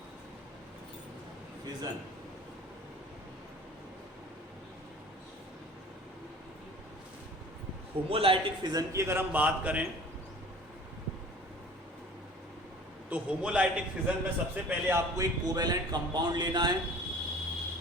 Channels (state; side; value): normal; both; correlation 0.45